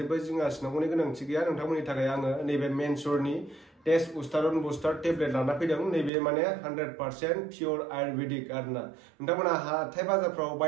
जिंगा सिनांगौनि गोनांथि गैया नोंथांमोननि थाखाय आङो नैबे मेनसुरनि टेस्टस्टेरन बुस्टार टेब्लेट लाना फैदों नैबे माने 100% पियर आयुर्वेदिक आरोना नोंथांमोना हाथाय बाजारफ्राव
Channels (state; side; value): drops out; left; at 6.1 s